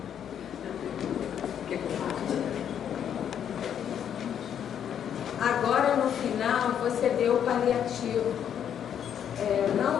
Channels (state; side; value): quieter; right; 9.0 dB